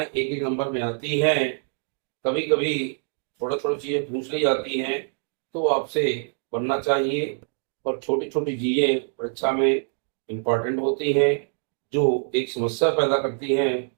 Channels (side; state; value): left; silent; 55 dB below the other